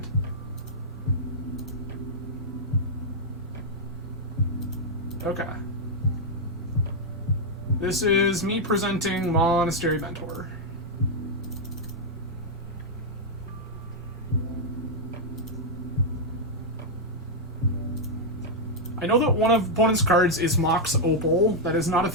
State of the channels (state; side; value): normal; both; correlation -0.03